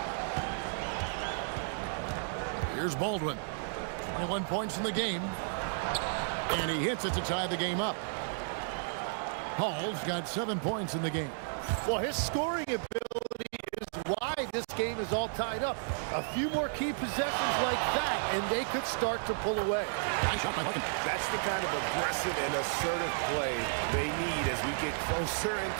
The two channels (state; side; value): silent; left; digital silence